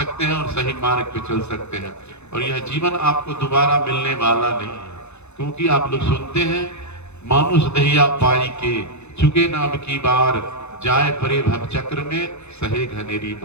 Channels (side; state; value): right; late; 0.81 ms